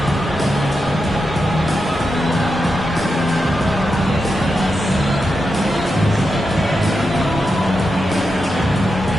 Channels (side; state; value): both; normal; correlation 0.88